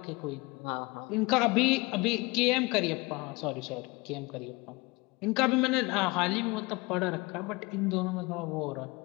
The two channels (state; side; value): quieter; right; 25.0 dB